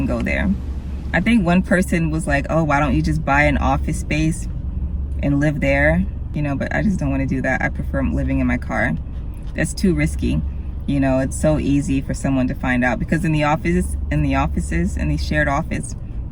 go there. I think one person was like, oh, why don't you just buy an office space and live there? You know, but I just don't want to do that. I prefer living in my car. That's too risky. You know, it's so easy for someone to find out, because in the offices, in the shared office,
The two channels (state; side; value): identical; both; correlation 1.00